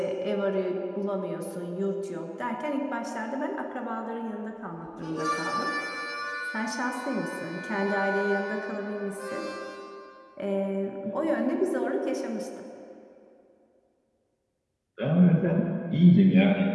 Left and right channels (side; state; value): both; identical; correlation 1.00